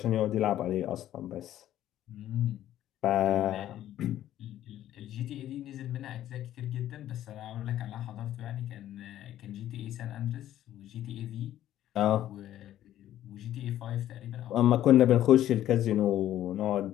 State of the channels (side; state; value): right; quieter; 12.5 dB